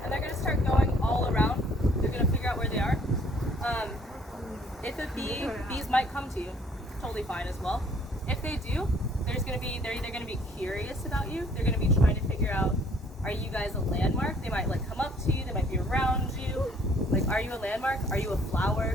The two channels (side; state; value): both; normal; correlation 0.60